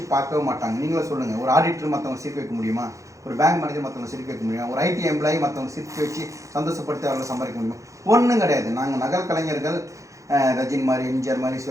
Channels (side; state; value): left; late; 0.15 ms